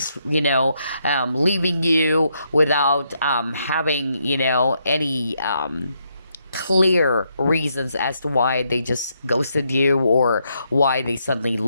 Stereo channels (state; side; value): inverted; both; correlation -0.77